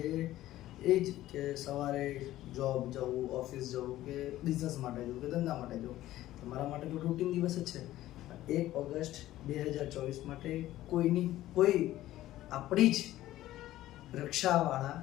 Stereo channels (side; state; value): right; quieter; 14.8 dB